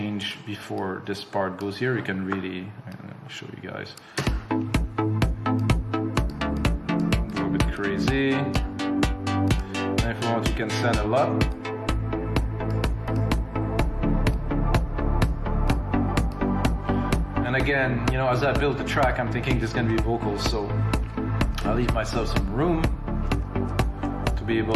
before this part goes here, you can really, I'll show you guys. Go a bit crazy. And if you want, you can send a lot. And again, you know, as I build the track, I'm thinking there's gonna be vocals, so I'll leave myself some room to be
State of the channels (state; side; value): identical; both; correlation 1.00